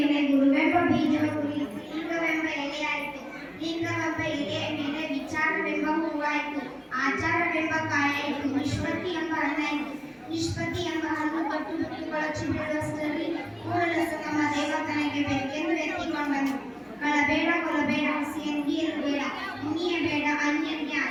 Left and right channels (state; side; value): identical; both; correlation 1.00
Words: ಗುರುವೆಂಬ ಬೀಜವ ಕುರಿತು ಲಿಂಗವೆಂಬ ಎಲೆಯಾಯಿತು. ಲಿಂಗವೆಂಬ ಎಲೆಯ ಮೇಲೆ ವಿಚಾರವೆಂಬ ಹೂವಾಯಿತು. ಆಚಾರವೆಂಬ ಕಾಯಾಯಿತು. ನಿಷ್ಪತ್ತಿ ಎಂಬ ಹಣ್ಣಾಯಿತು. ನಿಷ್ಪತ್ತಿ ಎಂಬ ಹಣ್ಣು ಕಟ್ಟು ಬಿಟ್ಟು ಬೀಳುವಷ್ಟರಲ್ಲಿ ಕೂಡಲಸ ನಮ್ಮ ದೇವತನಿಗೆ ಬೇಕೆಂದು ಎತ್ತಿಕೊಂಡನು. ಕಳಬೇಡ, ಕೊಲಬೇಡ, ಹಸಿಯಂಗಿಯರು ಬೇಡ, ಮುನಿಯಬೇಡ, ಅನ್ಯನಿಗೆ